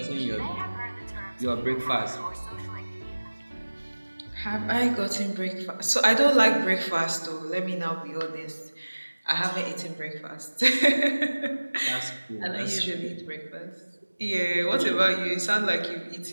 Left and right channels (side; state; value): both; inverted; correlation -1.00